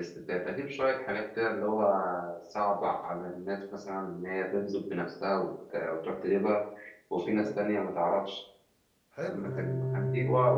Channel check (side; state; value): both; identical; correlation 1.00